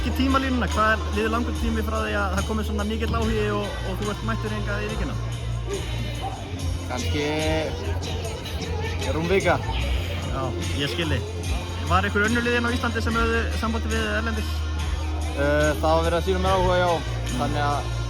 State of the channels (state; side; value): identical; both; correlation 1.00